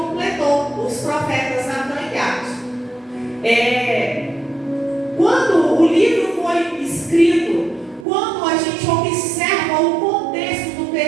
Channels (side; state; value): left; drops out; at 8.1 s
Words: os profetas Natan e Gad. Quando o livro foi escrito, quando a gente observa o contexto do